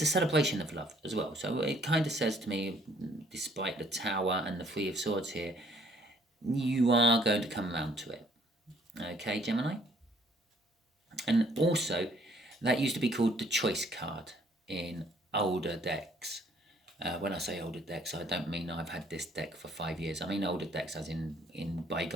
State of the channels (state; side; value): normal; both; correlation 0.63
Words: a celebration of love as well. So it kind of says to me, despite the Tower and the Three of Swords here, you are going to come around to it. Okay, Gemini? And also, that used to be called the Choice card in older decks. When I say older decks, I don't mean I've had this deck for 5 years. I mean older decks as in